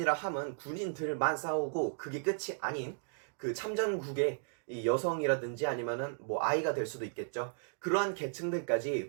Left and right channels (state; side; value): silent; left; digital silence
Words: 함은 군인들만 싸우고 그게 끝이 아닌 그 참전국의 이 여성이라든지 아니면은 뭐 아이가 될 수도 있겠죠. 그러한